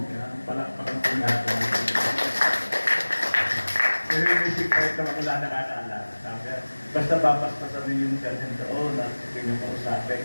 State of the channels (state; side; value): inverted; both; correlation -1.00